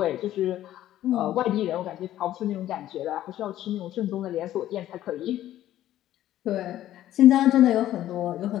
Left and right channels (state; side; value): quieter; right; 13.1 dB